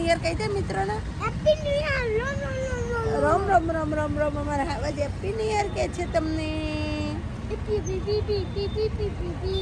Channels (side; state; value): both; identical; correlation 1.00